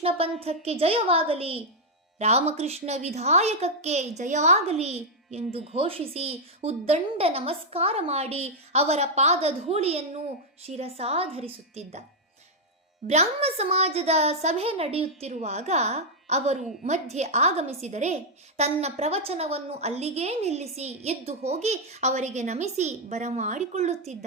ಪಂಥಕ್ಕೆ ಜಯವಾಗಲಿ, ರಾಮಕೃಷ್ಣ ವಿಧಾಯಕಕ್ಕೆ ಜಯವಾಗಲಿ ಎಂದು ಘೋಷಿಸಿ ಉದ್ದಂಡ ನಮಸ್ಕಾರ ಮಾಡಿ ಅವರ ಪಾದಧೂಳಿಯನ್ನು ಶಿರಸಾಧರಿಸುತ್ತಿದ್ದ. ಬ್ರಾಹ್ಮ ಸಮಾಜದ ಸಭೆ ನಡೆಯುತ್ತಿರುವಾಗ ಅವರು ಮಧ್ಯೆ ಆಗಮಿಸಿದರೆ ತನ್ನ ಪ್ರವಚನವನ್ನು ಅಲ್ಲಿಗೇ ನಿಲ್ಲಿಸಿ ಎದ್ದು ಹೋಗಿ ಅವರಿಗೆ ನಮಿಸಿ ಬರಮಾಡಿಕೊಳ್ಳುತ್ತಿದ್ದ.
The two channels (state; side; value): normal; both; correlation -0.02